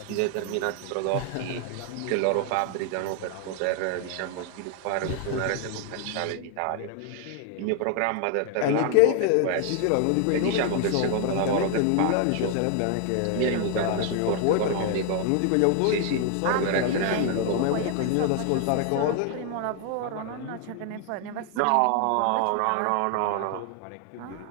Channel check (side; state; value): both; different; correlation 0.00